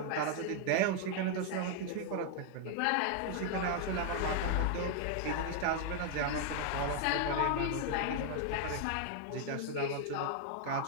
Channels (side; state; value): both; different; correlation 0.00